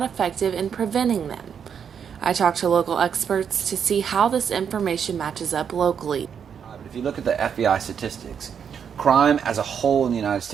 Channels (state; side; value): quieter; left; 7.5 dB